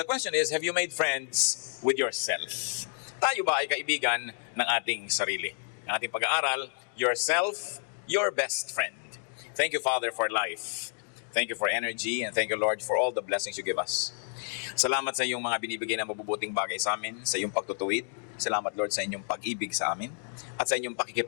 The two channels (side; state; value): right; silent; digital silence